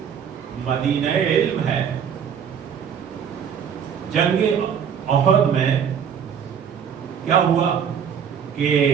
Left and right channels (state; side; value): quieter; left; 7.8 dB